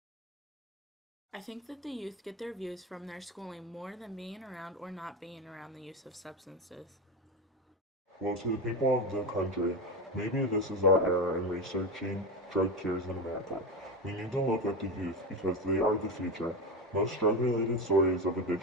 I think that the youth get their views from their schooling more than being around or not being around the use of substances. Well, to the people of the country, maybe this is our era in researching drug cures in America. We need to look at the youth because they are the future. Most drug-related stories of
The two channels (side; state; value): both; normal; correlation 0.18